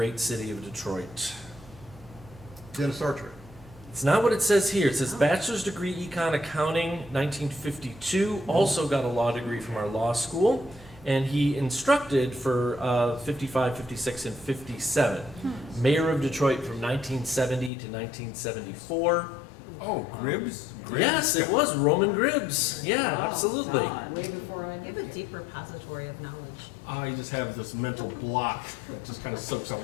city of Detroit? Dennis Archer. It's not what it says here. It says bachelor's degree econ accounting, 1952. Also got a law degree from our law school. And he instructed for 55, 56, and 57. Mayor of Detroit from 1970 to 1974. Oh, Gribbs? Yes, it was Roman Gribbs. Yeah, Wow, absolutely. Don. way before I You have knew a it. deep repository of knowledge. I just have this mental block that just kind of soaks up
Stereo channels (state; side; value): drops out; right; at 17.7 s